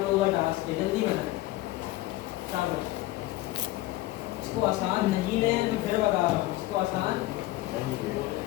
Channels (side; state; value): right; quieter; 17.7 dB